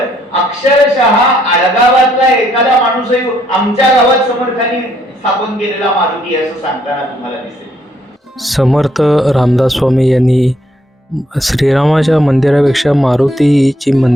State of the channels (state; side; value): normal; both; correlation 0.70